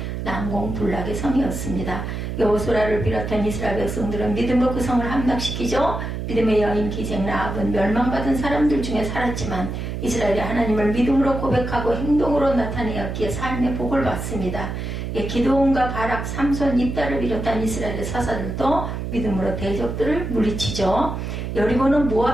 난공불락의 성이었습니다. 여호수아를 비롯한 이스라엘 백성들은 믿음으로 그 성을 함락시키죠. 믿음의 여인 기생 라합은 멸망받은 사람들 중에 살았지만 이스라엘이 하나님을 믿음으로 고백하고 행동으로 나타내었기에 삶의 복을 받습니다. 기드온과 바락, 삼손, 입다를 비롯한 이스라엘의 사사들도 믿음으로 대적들을 물리치죠. 여리고는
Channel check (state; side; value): noise; right; hum, 5 dB below the sound